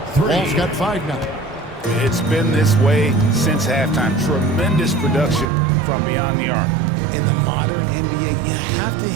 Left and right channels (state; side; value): drops out; left; at 5.5 s